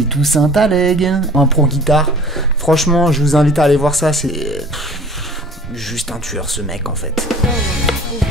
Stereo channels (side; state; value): both; normal; correlation 0.46